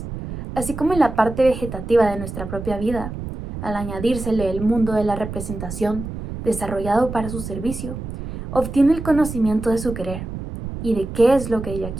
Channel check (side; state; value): right; noise; rumble, 8 dB below the sound